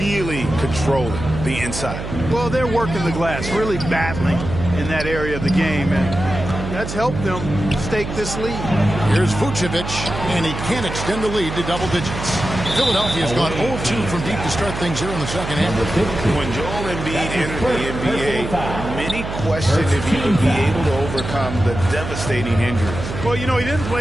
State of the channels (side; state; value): right; noise; hum, 7 dB below the sound